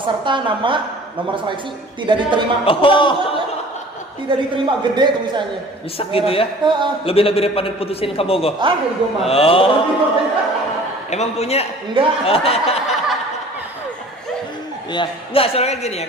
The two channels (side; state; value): both; normal; correlation 0.47